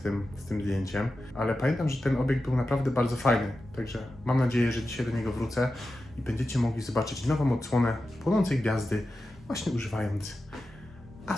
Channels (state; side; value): normal; both; correlation 0.92